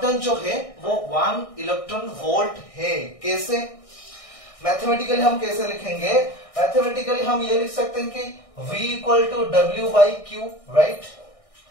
डन जो है वो 1 इलेक्ट्रॉन वोल्ट है। कैसे, मैथमेटिकली हम कैसे लिखेंगे, मैथमेटिकली हम ये लिख सकते हैं कि V equal to W by q, right.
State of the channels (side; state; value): right; late; 1.6 ms